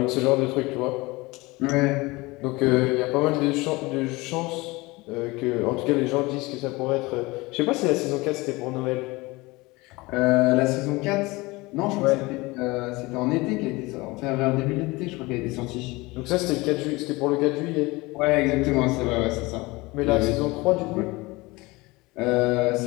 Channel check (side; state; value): right; quieter; 22.6 dB